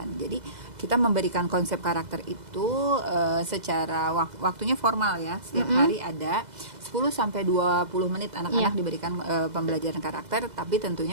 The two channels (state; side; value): late; left; 2.0 ms